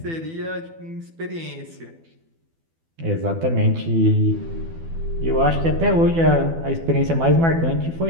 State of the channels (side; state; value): left; late; 12 ms